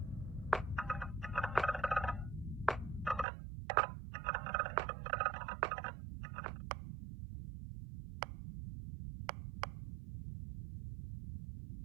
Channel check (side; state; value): left; drops out; at 3.2 s